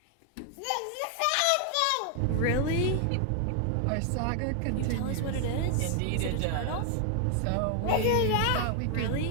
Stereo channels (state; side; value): different; both; correlation 0.00